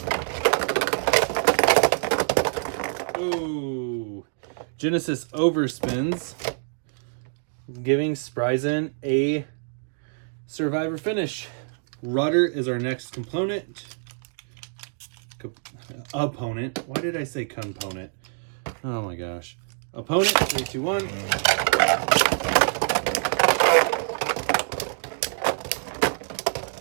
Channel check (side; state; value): left; silent; 61 dB below the other